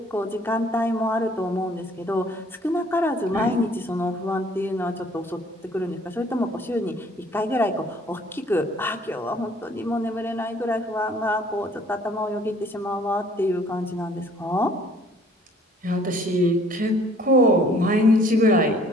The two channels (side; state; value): both; normal; correlation 0.57